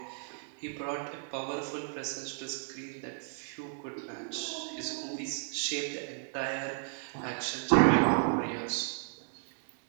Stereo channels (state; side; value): silent; left; 55 dB below the other